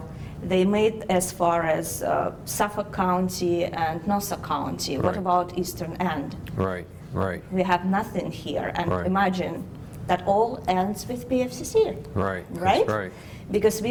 they made as far as Suffolk County and Nassau County. What Right. about Eastern End? Right. Right. We have nothing here, and Right. imagine that all ends with PFCC. Right. Right? That's right. Because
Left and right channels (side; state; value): both; identical; correlation 1.00